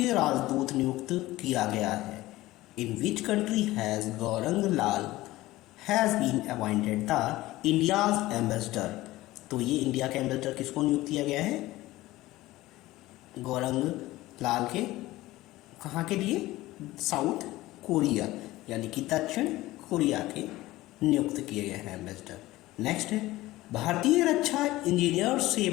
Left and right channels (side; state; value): right; quieter; 17.7 dB